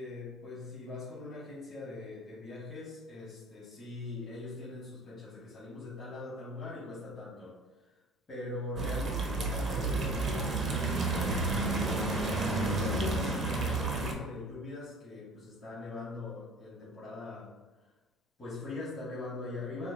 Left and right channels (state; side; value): normal; both; correlation 0.44